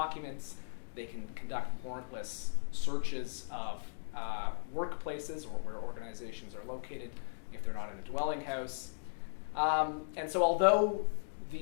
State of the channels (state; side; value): silent; right; digital silence